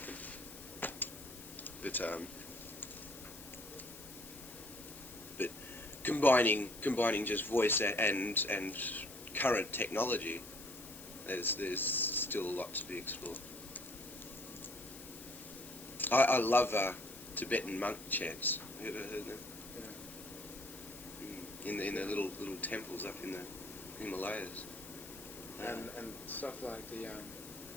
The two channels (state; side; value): noise; left; hiss, 15 dB below the sound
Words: but combining just voice and current technology, there's still a lot to be explored. I love Tibetan monk chants. Have you ever heard them? Yeah. In the little temples up in the Himalayas. And stuff like the